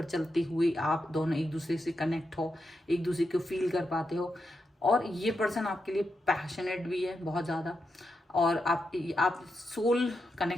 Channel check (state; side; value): normal; both; correlation 0.86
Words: चलते हुए आप दोनों एक दूसरे से कनेक्ट हो, एक दूसरे को फील कर पाते हो। और ये पर्सन आपके लिए पैशनेट भी है बहुत ज़्यादा, और आप सोल